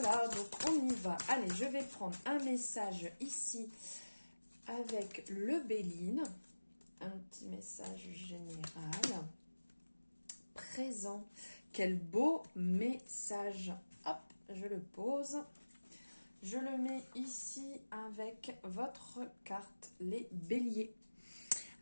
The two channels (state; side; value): inverted; both; correlation -1.00